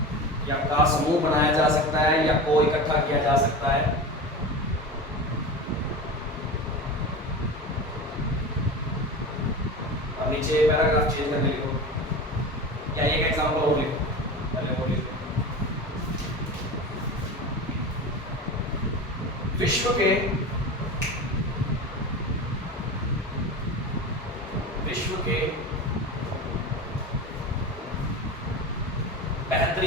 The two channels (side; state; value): both; normal; correlation 0.29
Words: या का समूह बनाया जा सकता है या को इकट्ठा किया जा सकता है। अब नीचे पैराग्राफ चेंज करके लिखो या एक एग्जांपल और लिखो, पहले वो लिखो। विश्व के